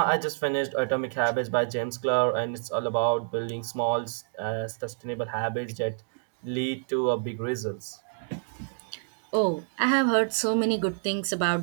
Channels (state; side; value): silent; left; digital silence